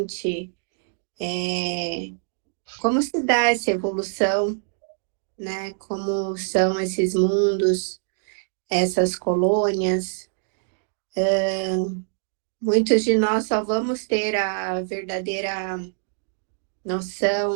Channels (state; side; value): silent; left; digital silence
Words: como se dá essa evolução, né? Como são esses mundos, essas colônias. Muitos de nós só vamos ter a verdadeira